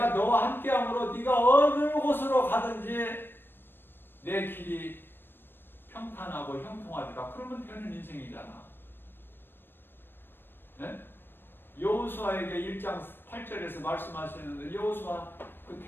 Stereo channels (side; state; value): right; late; 0.098 ms